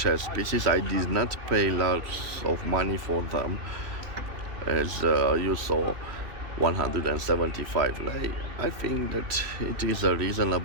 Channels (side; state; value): left; late; 3.1 ms